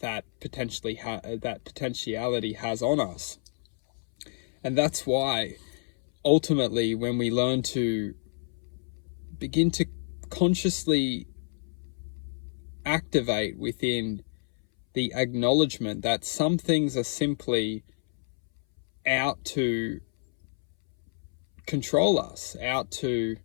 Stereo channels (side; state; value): right; silent; 59 dB below the other